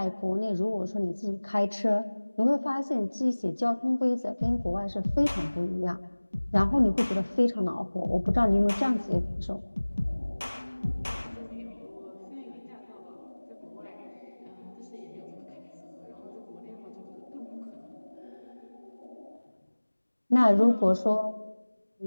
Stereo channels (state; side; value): inverted; both; correlation -1.00